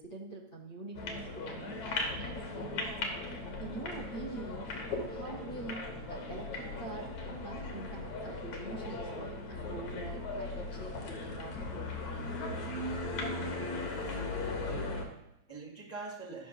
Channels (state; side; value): late; right; 9.2 ms